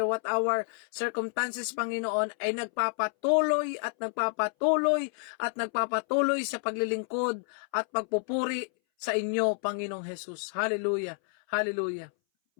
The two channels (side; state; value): right; silent; 58 dB below the other